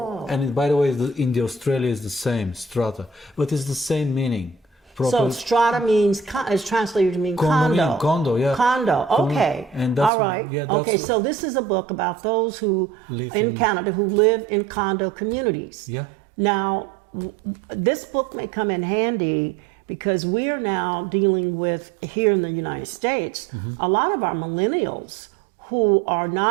And by the way, in the Australia is the same, strata, but it's the same meaning. So strata means, is translated to mean condo. Condominium, condo, yeah. Condo, okay. And that's all right. yeah, that's okay, so this is a book about those who Live in in- Canada who live in condo communities. Yeah. Now, this book may come in handy because we are now dealing with, here in the United States, Mm-hmm. a lot of our millennials who are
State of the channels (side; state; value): left; drops out; at 10.1 s